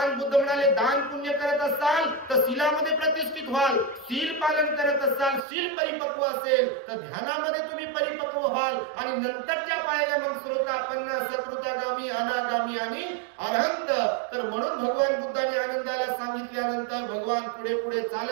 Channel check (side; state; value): left; drops out; at 5.4 s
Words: बुद्ध म्हणाले, दान पुण्य करत असाल तर शीलामध्ये प्रतिष्ठित व्हाल, शील पालन करत असाल, शील परिपक्व असेल तर ध्यानामध्ये तुम्ही परिपक्व व्हाल. आणि नंतरच्या पायऱ्या मग श्रोतापन्न, सकृतगामी, अनागामी आणि अरहंत. तर म्हणून भगवान बुद्धाने आनंदाला सांगितल्यानंतर भगवान पुढे पुढे